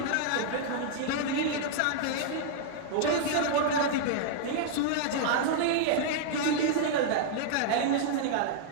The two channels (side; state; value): both; different; correlation -0.01